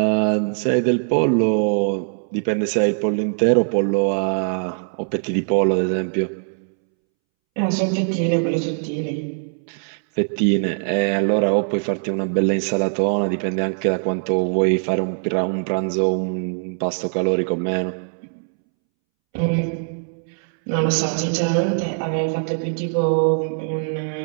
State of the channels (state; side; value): silent; left; 65 dB below the other